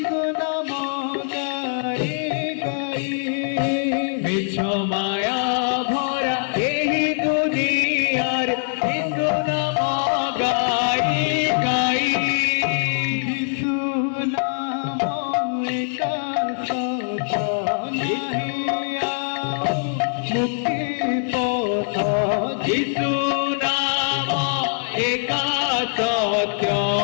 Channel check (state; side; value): silent; right; digital silence